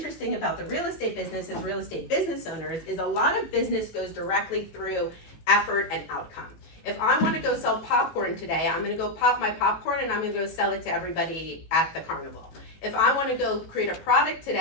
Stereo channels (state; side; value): late; right; 18 ms